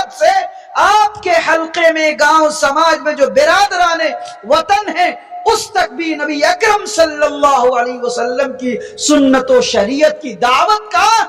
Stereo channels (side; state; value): both; identical; correlation 1.00